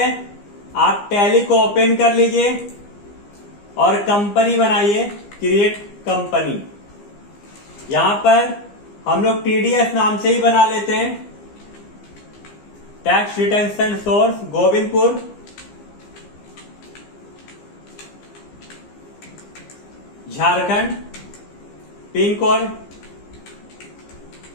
आप टैली को ओपन कर लीजिए और कंपनी बनाइए, क्रिएट कंपनी। यहां पर हम लोग टीडीएस नाम से ही बना लेते हैं। Tax retention source Govindpur, Jharkhand, pin code,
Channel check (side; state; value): right; late; 15 ms